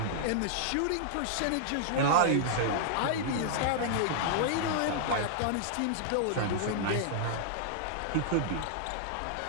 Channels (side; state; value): both; different; correlation -0.01